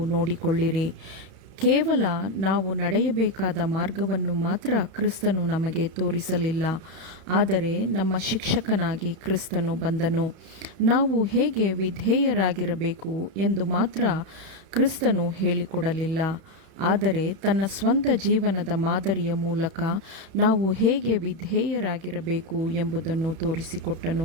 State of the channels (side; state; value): left; late; 31 ms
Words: ನೋಡಿಕೊಳ್ಳಿರಿ. ಕೇವಲ ನಾವು ನಡೆಯಬೇಕಾದ ಮಾರ್ಗವನ್ನು ಮಾತ್ರ ಕ್ರಿಸ್ತನು ನಮಗೆ ತೋರಿಸಲಿಲ್ಲ, ಆದರೆ ನಮ್ಮ ಶಿಕ್ಷಕನಾಗಿ ಕ್ರಿಸ್ತನು ಬಂದನು. ನಾವು ಹೇಗೆ ವಿಧೇಯರಾಗಿರಬೇಕು ಎಂದು ಮಾತ್ರ ಕ್ರಿಸ್ತನು ಹೇಳಿಕೊಡಲಿಲ್ಲ, ಆದರೆ ತನ್ನ ಸ್ವಂತ ಜೀವನದ ಮಾದರಿಯ ಮೂಲಕ ನಾವು ಹೇಗೆ ವಿಧೇಯರಾಗಿರಬೇಕು ಎಂಬುದನ್ನು ತೋರಿಸಿಕೊಟ್ಟನು.